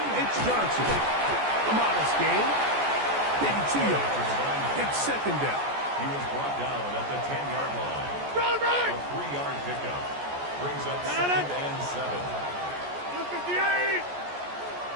it's Johnson. A modest gain. Maybe 2 yards. It's 2nd down. He was brought down at the 10-yard line. A 3-yard pickup. Brings up 2nd and 7. 58.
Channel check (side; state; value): left; late; 14 ms